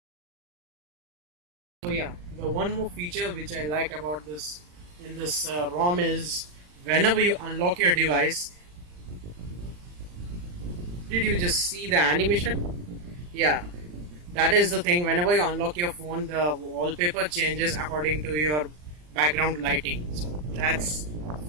So yeah, the one more feature which I liked about this in this ROM is whenever you unlock your device, did you just see the animation? Yeah, that is the thing. Whenever you unlock your phone, the wallpaper changes according to your background lighting. So that's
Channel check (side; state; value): left; late; 40 ms